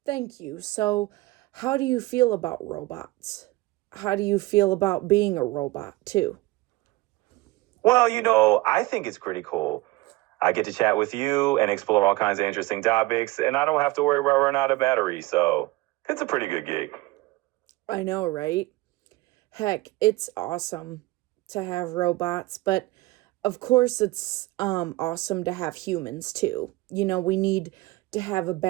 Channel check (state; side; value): quieter; left; 19.8 dB